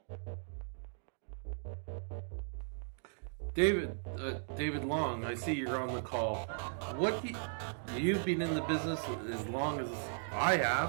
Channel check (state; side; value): silent; left; digital silence